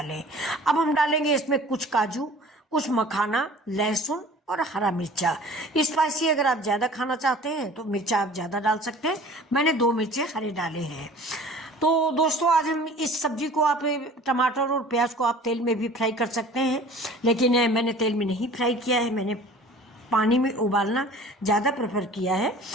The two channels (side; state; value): both; normal; correlation 0.45